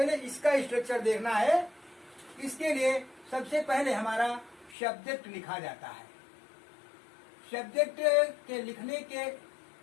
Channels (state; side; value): drops out; right; at 4.8 s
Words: इसका स्ट्रक्चर देखना है। इसके लिए सबसे पहले हमारा सब्जेक्ट लिखा जाता है। सब्जेक्ट के लिखने के